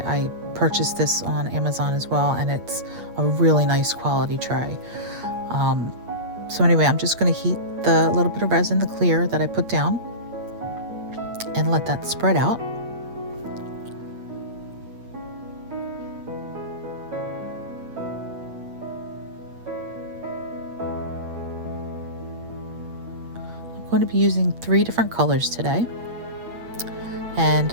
purchased this on Amazon as well, and it's a really nice quality tray. So anyway, I'm just going to heat the little bit of resin, the clear that I put down, and let that spread out. I'm going to be using 3 different colors today,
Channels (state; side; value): late; left; 8.5 ms